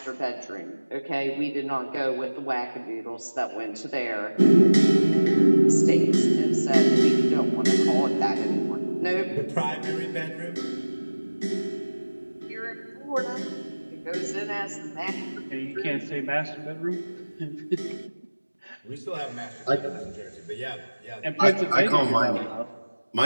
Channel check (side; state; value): both; inverted; correlation -1.00